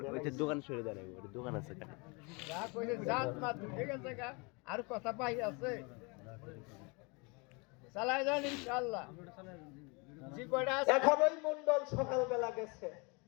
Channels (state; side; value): quieter; right; 30.0 dB